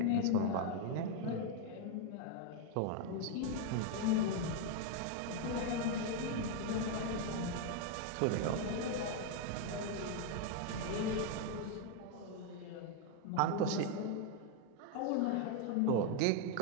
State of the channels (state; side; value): different; both; correlation 0.01